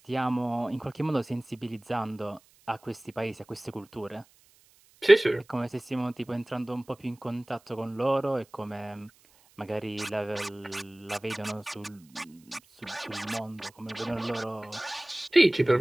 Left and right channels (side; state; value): right; noise; hiss, 30 dB below the sound